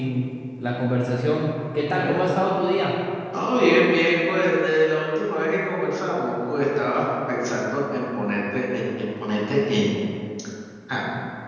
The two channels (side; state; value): both; identical; correlation 1.00